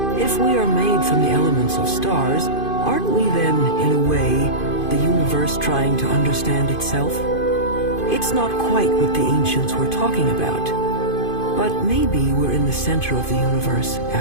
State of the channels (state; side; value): late; right; 2.5 ms